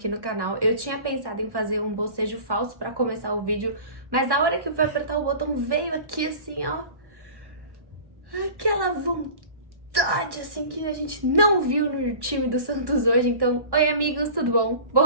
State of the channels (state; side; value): late; left; 1.1 ms